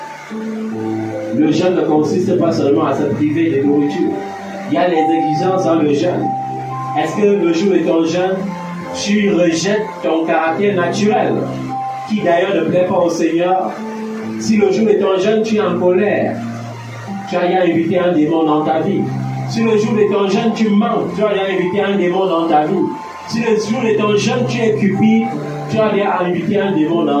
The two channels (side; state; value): both; identical; correlation 1.00